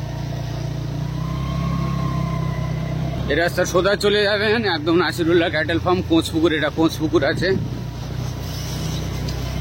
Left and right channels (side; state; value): right; noise; hum, 27 dB below the sound